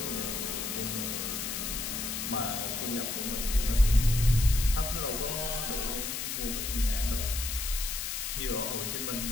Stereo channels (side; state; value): left; noise; hiss, 3 dB below the sound